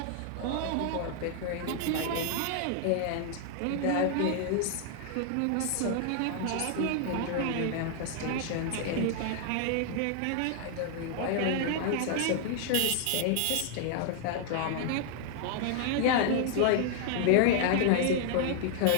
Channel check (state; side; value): different; both; correlation 0.00